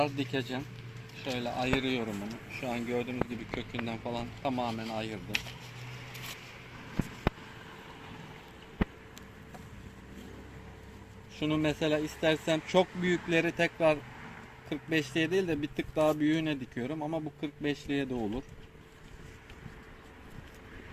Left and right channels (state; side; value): identical; both; correlation 1.00